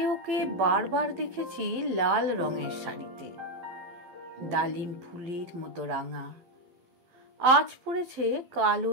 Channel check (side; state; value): left; late; 12 ms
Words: ওকে বারবার দেখেছি লাল রঙের শাড়িতে, ডালিম ফুলের মতো রাঙা। আজ পরেছে কালো